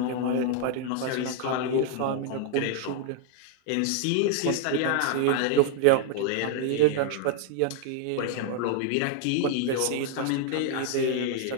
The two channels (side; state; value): both; different; correlation 0.00